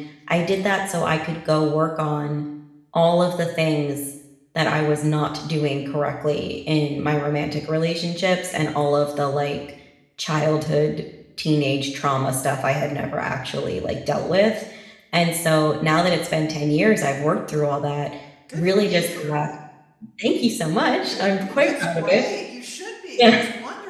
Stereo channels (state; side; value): identical; both; correlation 1.00